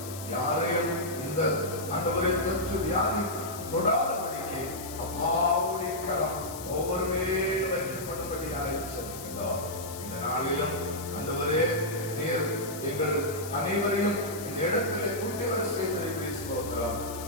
யாரையும் இந்த ஆண்டவரை தொற்று வியாதி தொடாதபடிக்கு அப்பாவுடைய கரம் ஒவ்வொரு மேலும் வைக்கப்படும்படியாக செல்கின்றோம். இந்த நாளிலும் ஆண்டவரே, நீர் எங்கள் அனைவரையும் இந்த இடத்திலே கூட்டி வர செய்திருக்கிறோம்.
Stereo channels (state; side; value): noise; left; hiss, 12 dB below the sound